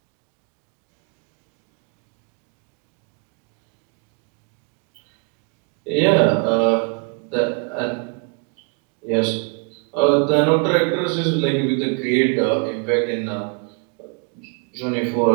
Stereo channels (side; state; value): left; quieter; 36.5 dB